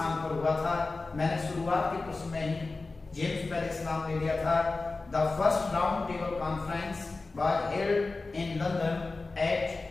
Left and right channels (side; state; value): right; quieter; 3.6 dB